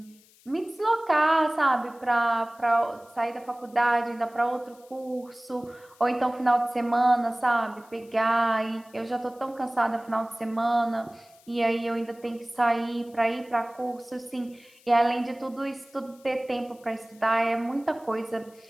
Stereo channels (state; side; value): noise; left; hiss, 28 dB below the sound